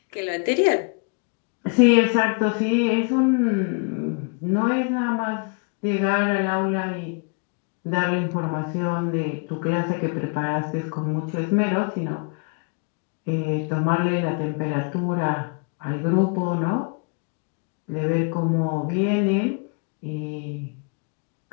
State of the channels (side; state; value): right; quieter; 35.2 dB